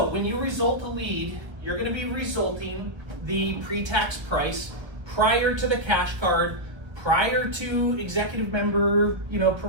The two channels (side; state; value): left; late; 1.2 ms